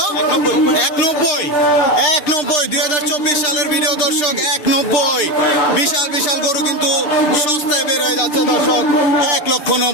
190। 190 2024 সালের ভিডিও দর্শক, 190। বিশাল বিশাল গরু কিন্তু সস্তায় বের হয়ে যাচ্ছে দর্শক,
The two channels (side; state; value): right; late; 6.8 ms